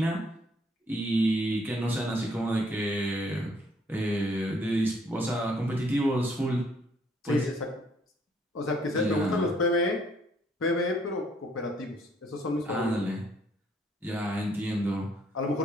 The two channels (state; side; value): normal; both; correlation 0.65